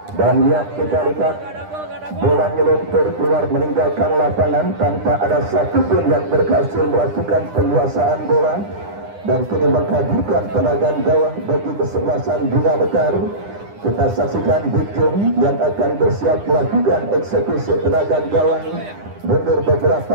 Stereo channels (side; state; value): left; late; 9.9 ms